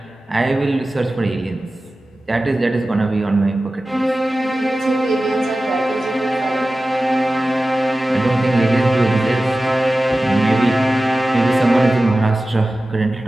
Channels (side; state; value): both; normal; correlation 0.95